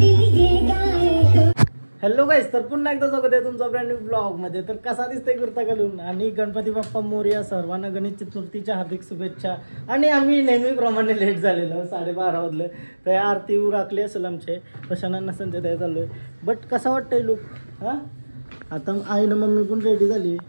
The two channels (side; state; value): both; inverted; correlation -1.00